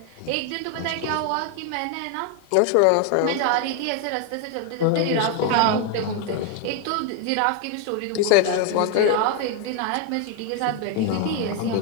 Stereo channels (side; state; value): both; different; correlation 0.01